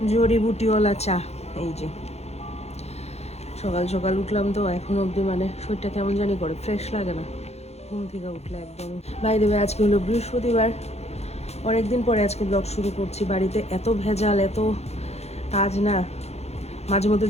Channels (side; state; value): right; late; 0.31 ms